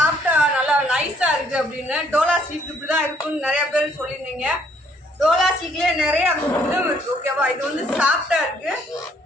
நல்லா நைஸா இருக்கு அப்படின்னு. டோலா சில்க் இப்படிதான் இருக்குன்னு நிறைய பேர் சொல்லியிருந்தீங்க. டோலா சில்க்லயே நிறைய இதுவும் இருக்கு. ஓகேவா? இது வந்து சாஃப்டா இருக்கு,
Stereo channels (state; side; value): normal; both; correlation 0.66